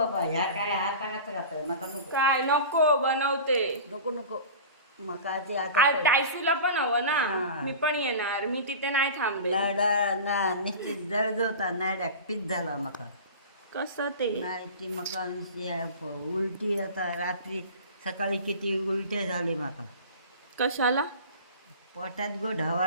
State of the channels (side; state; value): both; inverted; correlation -0.35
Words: ह्या काय हाताळात राहतं नका नको काय नको बनवते. नको नको मका ते आता टायसूला पण हवं ना. हा. मी पण येणार. मी तिथे नाही थांबे. लाडा ना निश्चित जळजवता नाडा पीत झाला मका कसं ते नाही ती मका उलटी आता रात्री सकाळी किती उलटे झाले मका कशाला? पोटात गो